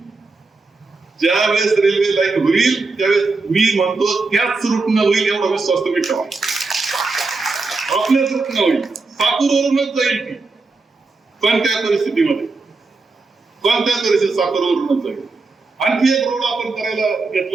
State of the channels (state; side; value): quieter; left; 3.8 dB